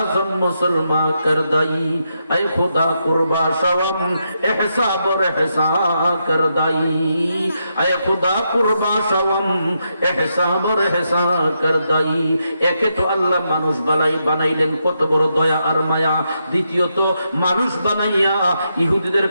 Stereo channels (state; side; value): inverted; both; correlation -0.82